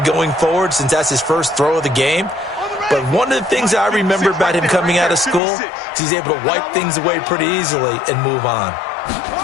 going forward since that's his first throw of the game. But one of the things I remember about him coming out of school is he's able to wipe things away pretty easily and move on.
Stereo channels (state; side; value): drops out; right; at 5.4 s